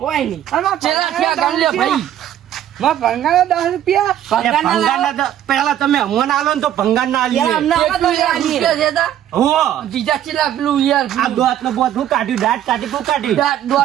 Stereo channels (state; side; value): quieter; left; 11.3 dB